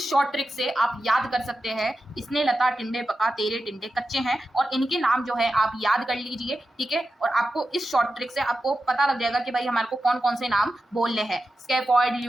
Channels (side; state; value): both; normal; correlation 0.91